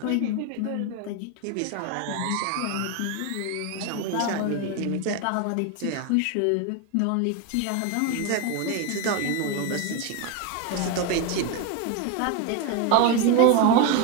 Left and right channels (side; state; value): both; different; correlation 0.02